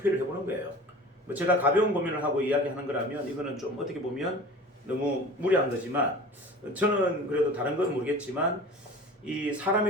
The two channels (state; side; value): normal; both; correlation 0.39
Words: 해보는 거예요. 뭐 제가 가벼운 고민을 하고 이야기하는 거라면 이거는 좀 어떻게 보면 너무 무리한 거지만 저는 그래도 다른 건 모르겠지만 이 사람에